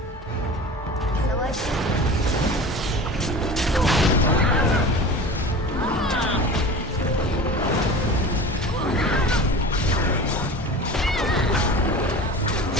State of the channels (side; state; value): both; normal; correlation 0.36